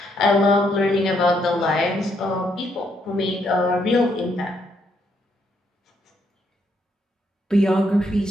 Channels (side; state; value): both; normal; correlation 0.74